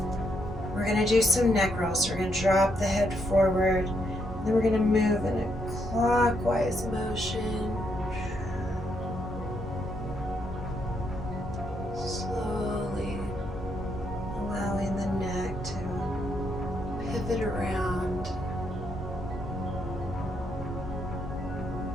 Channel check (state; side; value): normal; both; correlation 0.77